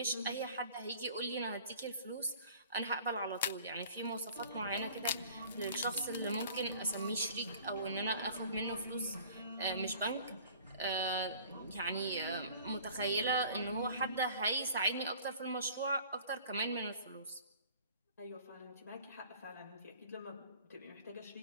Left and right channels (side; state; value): both; inverted; correlation -0.48